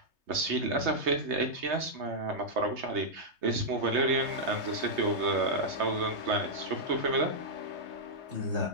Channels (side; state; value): left; late; 3.3 ms